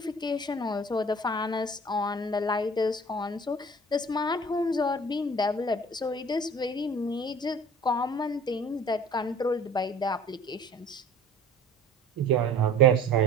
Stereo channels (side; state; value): both; normal; correlation 0.46